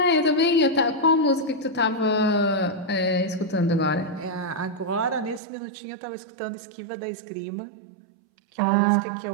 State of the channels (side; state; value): left; drops out; at 5.4 s